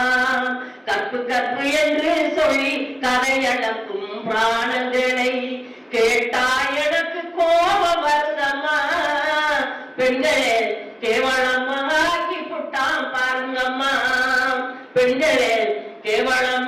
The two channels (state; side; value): identical; both; correlation 1.00